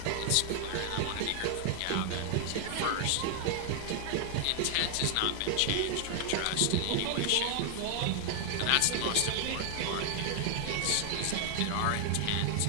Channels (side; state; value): both; different; correlation 0.00